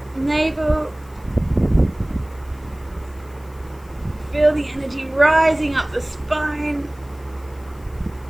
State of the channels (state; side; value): noise; left; hiss, 28 dB below the sound